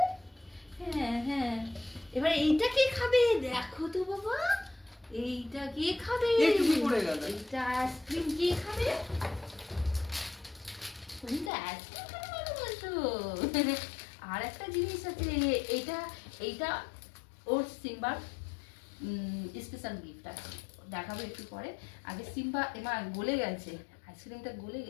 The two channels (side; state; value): right; drops out; at 11.5 s